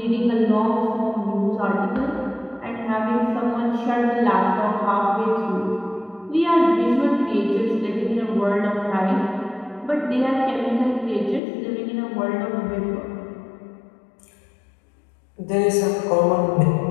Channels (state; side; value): drops out; right; at 11.4 s